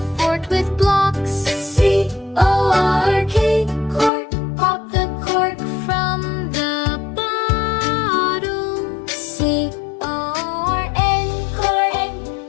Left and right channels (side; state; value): right; drops out; at 4.1 s